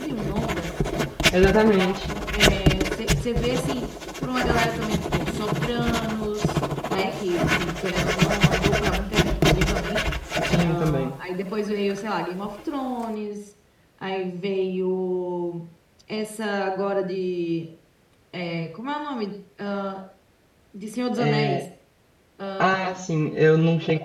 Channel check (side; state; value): both; identical; correlation 1.00